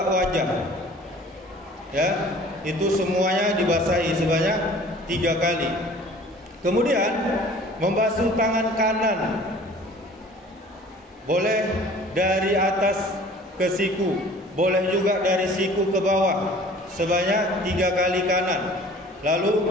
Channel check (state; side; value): normal; both; correlation 0.48